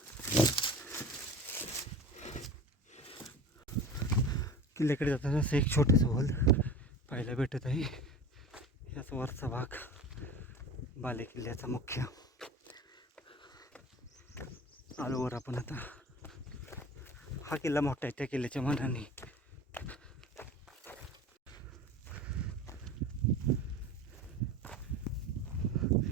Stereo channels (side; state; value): both; normal; correlation 0.36